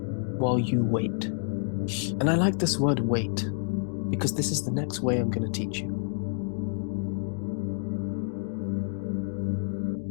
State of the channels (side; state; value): right; silent; 59 dB below the other